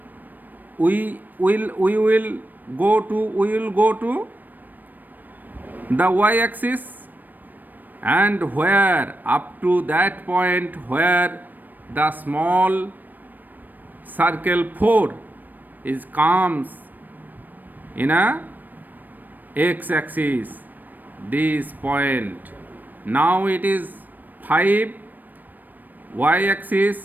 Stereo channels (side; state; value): left; late; 0.088 ms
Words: we will go to the y-axis, and where up to that point where the small circle 4 comes in a x-axis, this point. Now it is 5,